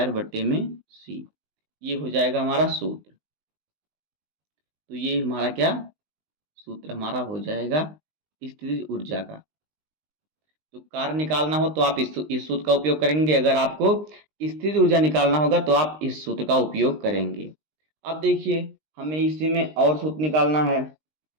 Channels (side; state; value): left; late; 19 ms